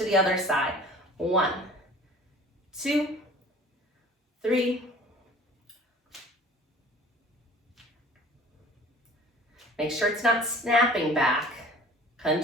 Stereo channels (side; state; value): both; normal; correlation 0.46